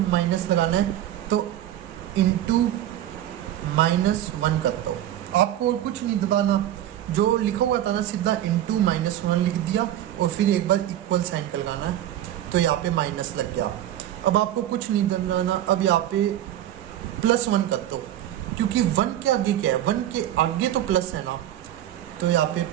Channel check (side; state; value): left; quieter; 12.4 dB